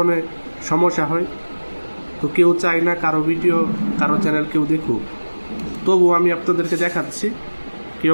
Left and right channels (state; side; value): inverted; both; correlation -1.00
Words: সমস্যা হয়। তো কেউ চায় না কারো ভিডিও, কারো চ্যানেল কেউ দেখুক, তবু আমি আপনাদেরকে দেখাচ্ছি,